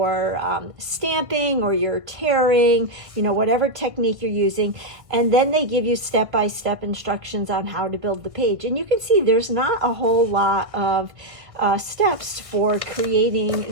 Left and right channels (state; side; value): late; left; 1.5 ms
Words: stamping or you're tearing, you know, whatever technique you're using, and then they give you step-by-step instructions on how to build the page. And you can see there's not a whole lot of steps for